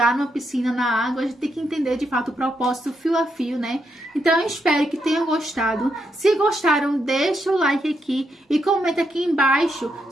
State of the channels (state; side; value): normal; both; correlation 0.80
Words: numa piscina na água, a gente tem que entender de fato o propósito fio a fio, né? Então eu espero que tenham gostado. Se gostaram, deixa o like aqui e comenta aqui embaixo